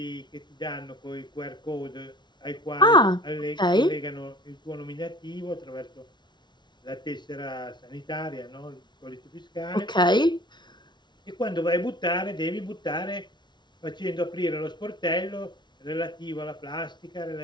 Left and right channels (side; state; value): right; late; 0.21 ms